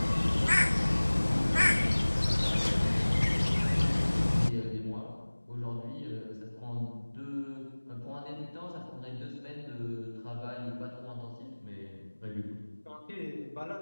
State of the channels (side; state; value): both; inverted; correlation -1.00